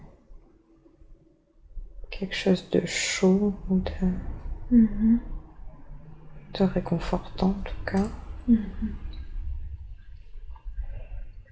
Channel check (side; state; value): both; identical; correlation 1.00